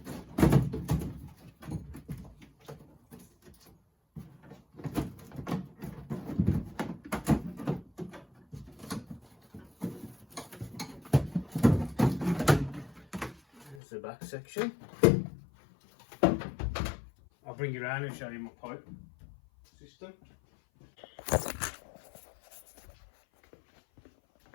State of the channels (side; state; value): right; drops out; at 13.8 s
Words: The back section. I'll bring you around and show you my pipe system.